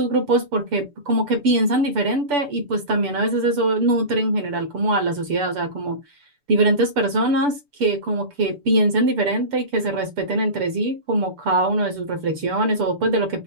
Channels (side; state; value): left; late; 6.9 ms